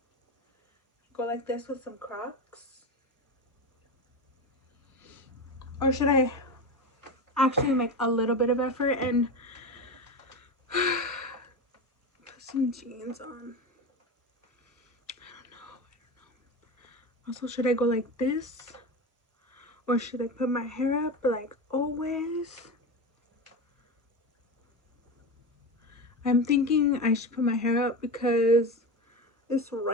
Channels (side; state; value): both; normal; correlation 0.22